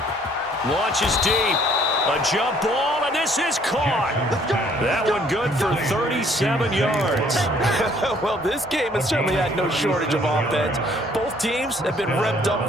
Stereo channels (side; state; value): both; normal; correlation 0.61